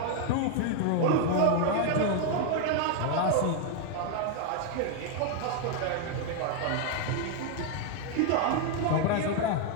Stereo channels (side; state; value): both; different; correlation 0.00